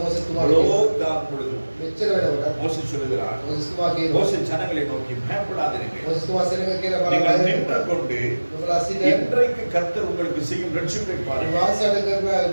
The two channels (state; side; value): inverted; both; correlation -1.00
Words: තුමාට அவ்வளோ தான் பொழுதும் මෙච්චර වෙනකොට மோசே சொல்லுகிறார். මෝසෙස් තුමා කියනවා மோசே ஜனங்களை நோக்கி பயப்படாதீர்கள். මෝසෙස් තුමා සෙනඟ කියලා நீங்கள் බලලා நின்று கொண்டு ඔබලා සිට இன்றைக்கு கர்த்தர் உங்களுக்கு செய்யும் ரட்சிப்பை பாருங்கள். වාසයට කරන